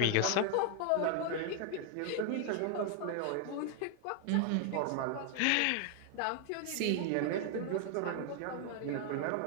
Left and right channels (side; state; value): both; different; correlation 0.00